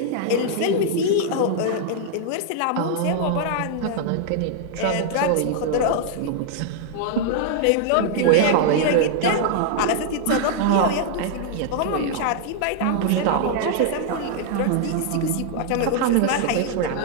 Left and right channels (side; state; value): both; different; correlation -0.01